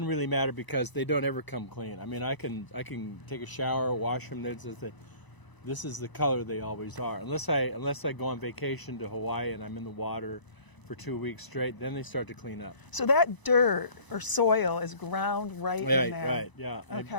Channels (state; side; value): late; right; 1.0 ms